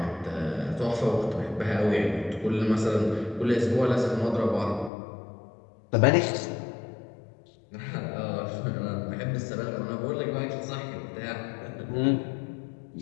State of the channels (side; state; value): right; drops out; at 4.9 s